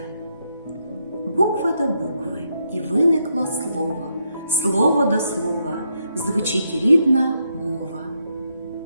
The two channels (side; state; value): both; inverted; correlation -0.79